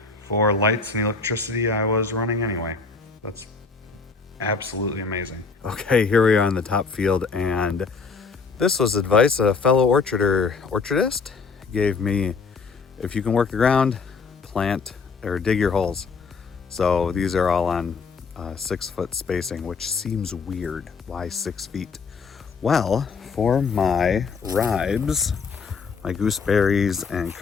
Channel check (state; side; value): quieter; right; 4.9 dB